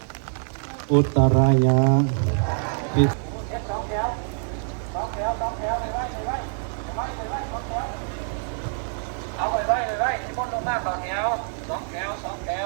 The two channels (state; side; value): silent; left; 60 dB below the other